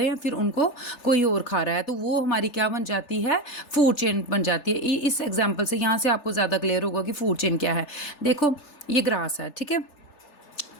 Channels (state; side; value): late; right; 3.4 ms